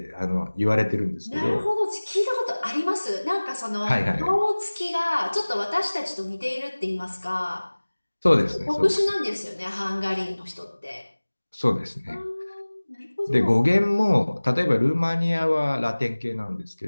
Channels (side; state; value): both; inverted; correlation -1.00